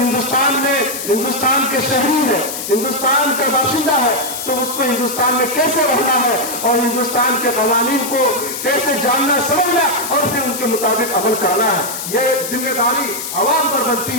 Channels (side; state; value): left; noise; hiss, 6 dB below the sound